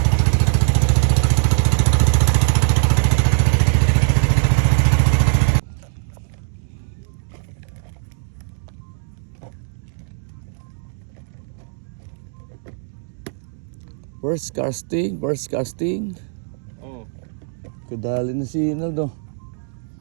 First casting. Kadali na si Inaldo.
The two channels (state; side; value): silent; left; digital silence